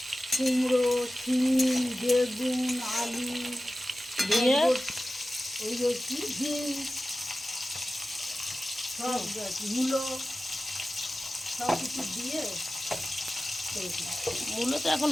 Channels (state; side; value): normal; both; correlation 0.95